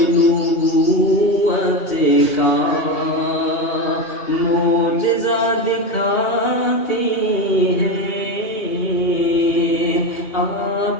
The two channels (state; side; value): late; right; 2.8 ms